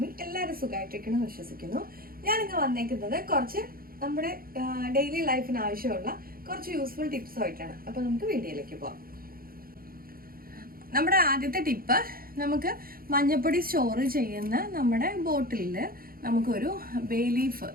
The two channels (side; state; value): left; late; 0.42 ms